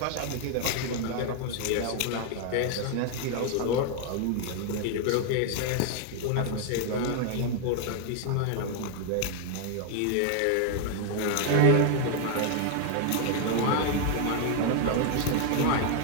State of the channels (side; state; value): both; different; correlation 0.00